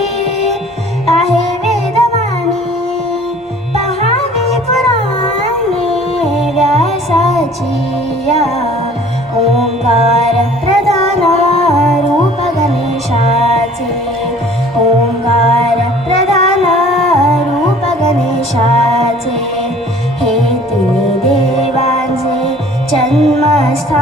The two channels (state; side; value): normal; both; correlation 0.50